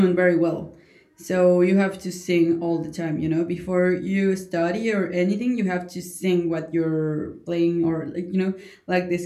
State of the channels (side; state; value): both; identical; correlation 1.00